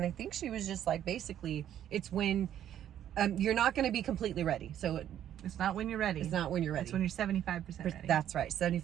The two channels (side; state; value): left; quieter; 10.8 dB